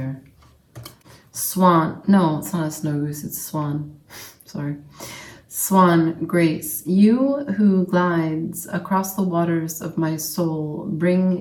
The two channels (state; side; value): identical; both; correlation 1.00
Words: Swan. No, it's not a snow goose, it's a swan. Sorry. Swan, Grace, you who glides across the waters of my soul,